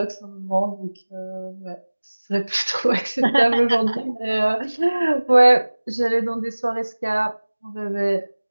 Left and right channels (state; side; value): inverted; both; correlation -1.00